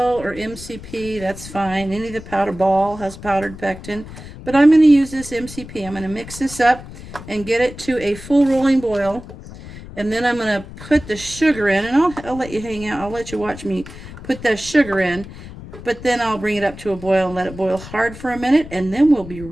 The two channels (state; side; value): noise; left; rumble, 14 dB below the sound